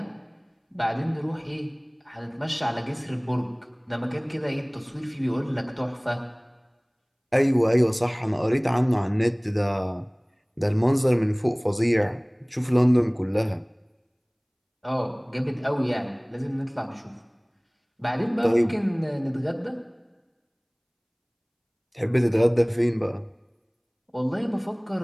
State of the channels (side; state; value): both; identical; correlation 1.00